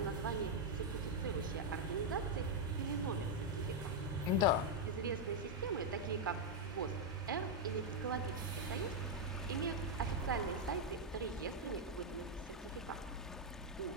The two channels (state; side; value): normal; both; correlation 0.00